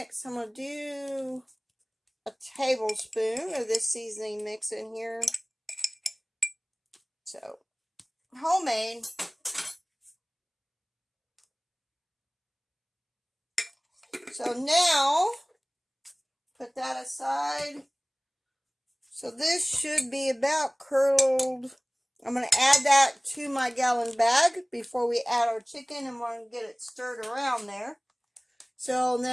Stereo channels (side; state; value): both; identical; correlation 1.00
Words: I'm going to do a tablespoon of this seasoning mix in here. So, homemade. So now, put that aside. So this should be about curdled. I'm going to add that to my gallon bag before we add our chicken, and we're going to get it stirred around there. So